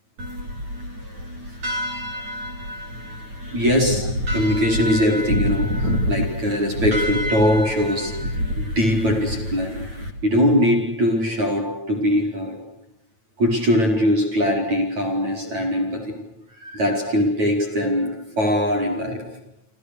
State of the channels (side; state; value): left; late; 9.1 ms